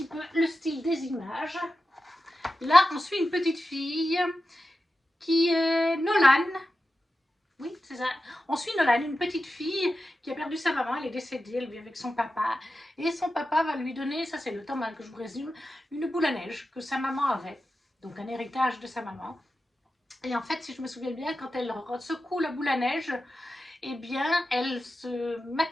peu le style des images. Là, on suit une petite fille qui est Nolan. Oui, c'est ça. On suit Nolan, une petite fille qui a perdu sa maman, elle est décédée, elle vit avec son papa. Et son papa va lui donner, ça c'est le tome 1 que je vous résume, une boule à neige que sa maman avait. Donc un héritage de sa maman. Et en fait, si je me souviens bien, quand elle secoue la boule à neige, eh bien, elle se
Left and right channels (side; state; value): both; normal; correlation 0.92